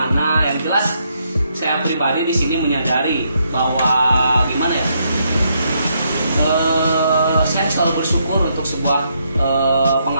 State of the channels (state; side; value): inverted; both; correlation -0.76